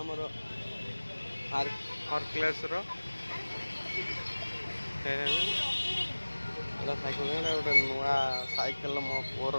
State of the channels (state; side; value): inverted; both; correlation -1.00